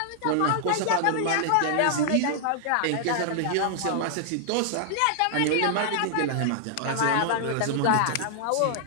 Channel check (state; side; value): different; both; correlation -0.01